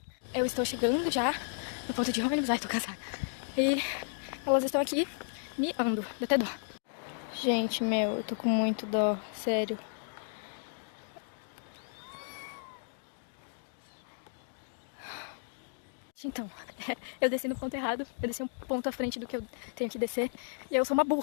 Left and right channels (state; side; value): silent; right; digital silence